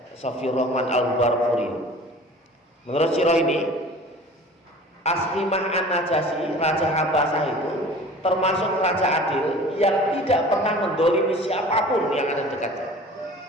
Safiyur Rahman Al-Barfuri. Menurut sirah ini, Ashimah An-Najasyi, Raja Habasah itu termasuk raja adil yang tidak pernah mendolimi siapapun yang ada dekatnya.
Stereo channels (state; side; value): normal; both; correlation 0.43